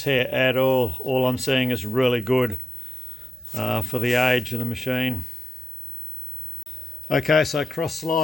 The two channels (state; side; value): normal; both; correlation 0.93